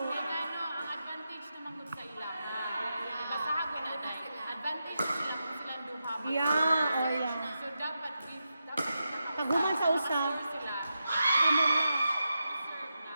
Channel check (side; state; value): both; inverted; correlation -0.88